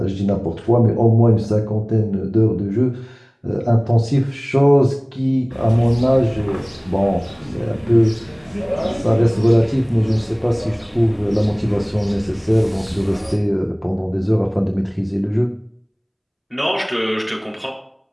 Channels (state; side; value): identical; both; correlation 1.00